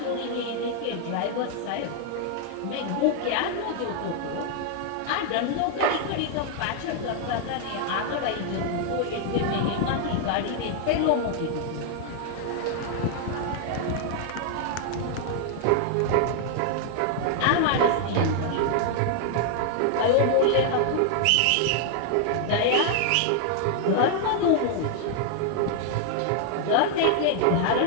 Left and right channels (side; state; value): both; different; correlation 0.00